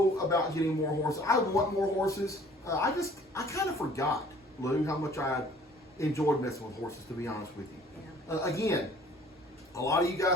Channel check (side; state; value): both; normal; correlation 0.53